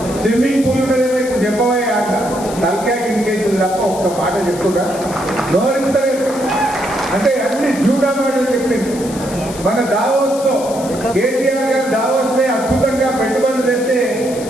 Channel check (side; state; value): left; noise; hiss, 14 dB below the sound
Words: స్విమ్మింగ్ పూల్ ఉన్నదేమో ఇప్పుడు చెప్పవా అంట. తలకాయ కిందికేసింది తప్ప ఒక్క మాట చెప్తుందా? నోరెత్తలేదు. అంటే అన్ని జూడా మాటలు చెప్పింది. మన దావోస్ లో కేటీఆర్ గారు దావోస్ లో అద్భుతంగా పెట్టుబడులు తెస్తే